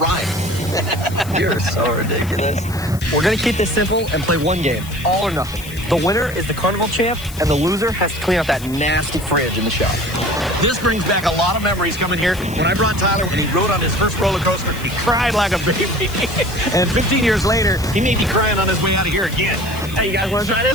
You're so ridiculous. We're gonna keep this simple and play one game, all or nothing. The winner is the Carnival champ, and the loser has to clean out that nasty fridge in the shop. This brings back a lot of memories coming here. When I brought Tyler, when he rode on his first roller coaster, he cried like a baby. And 15 years later, he may be crying on his way out of here again. Hey, you guys want to try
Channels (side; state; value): left; noise; hiss, 16 dB below the sound